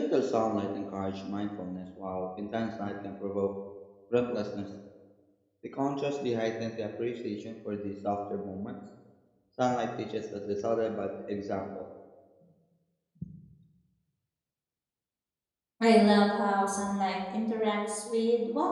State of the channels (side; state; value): both; identical; correlation 1.00